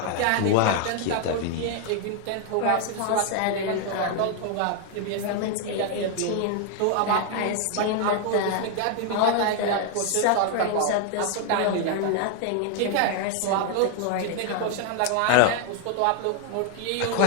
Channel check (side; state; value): both; different; correlation 0.00